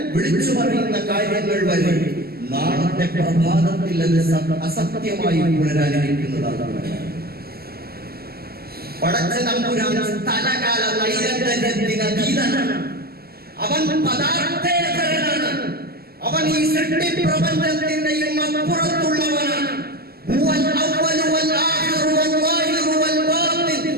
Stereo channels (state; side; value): late; left; 0.45 ms